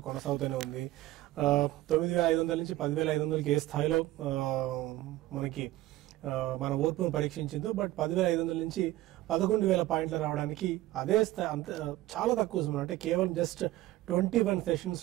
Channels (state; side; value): quieter; left; 16.1 dB